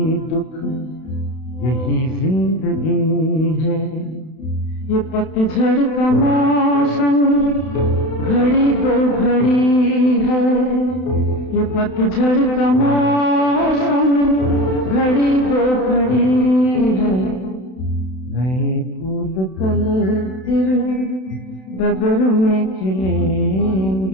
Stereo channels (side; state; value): right; late; 31 ms